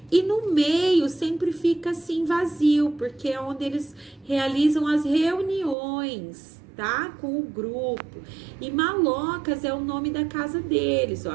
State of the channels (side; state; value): left; drops out; at 5.8 s